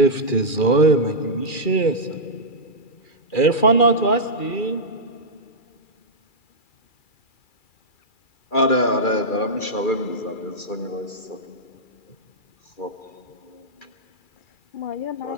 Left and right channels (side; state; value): right; late; 2.4 ms